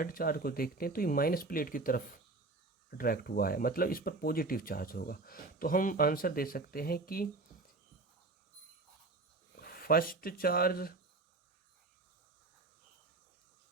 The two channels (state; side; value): quieter; left; 3.3 dB